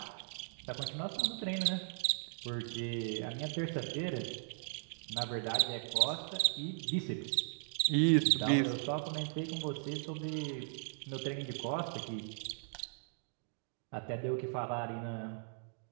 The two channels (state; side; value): silent; left; digital silence